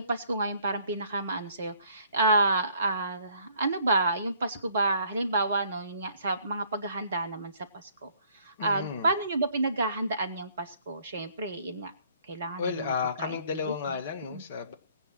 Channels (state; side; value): inverted; both; correlation -0.62